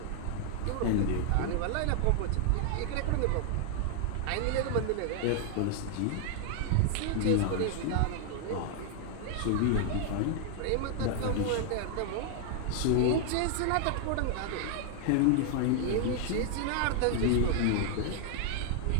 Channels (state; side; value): different; both; correlation 0.00